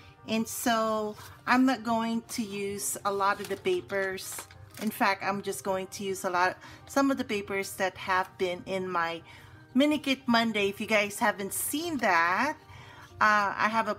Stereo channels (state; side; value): identical; both; correlation 1.00